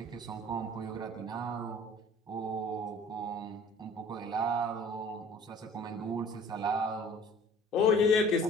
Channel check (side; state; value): both; normal; correlation 0.49